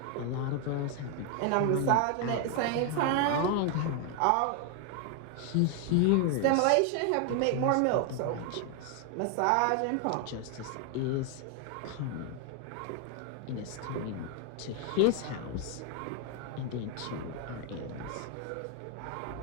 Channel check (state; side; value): different; both; correlation 0.01